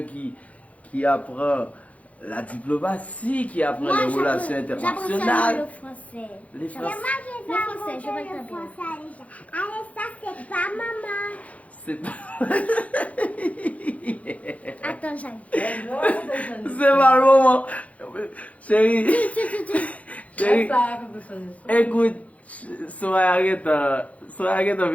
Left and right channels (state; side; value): late; right; 0.067 ms